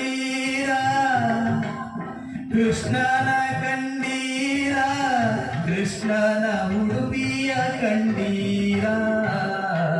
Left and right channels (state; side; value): identical; both; correlation 1.00